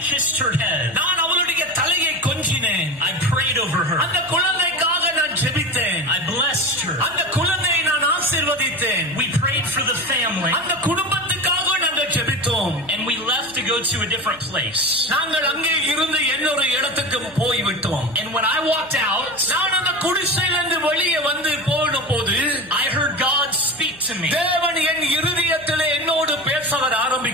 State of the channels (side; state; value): right; noise; hum, 25 dB below the sound